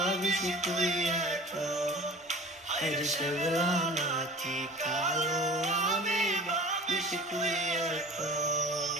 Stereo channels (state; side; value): normal; both; correlation 0.40